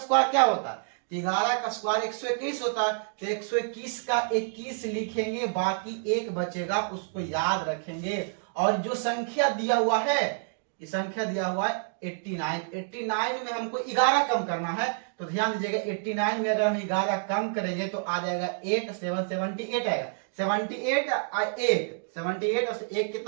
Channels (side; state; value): left; silent; digital silence